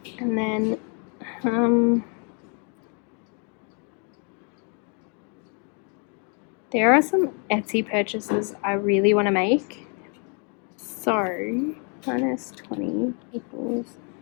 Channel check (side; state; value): right; quieter; 38.6 dB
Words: And then there are some Etsy purchases I really want to make. So minus 20 equals.